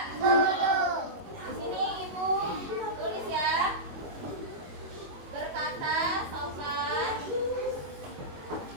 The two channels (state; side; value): late; left; 21 ms